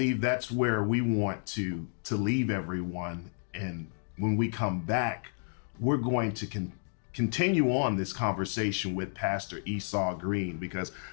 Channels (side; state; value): right; silent; digital silence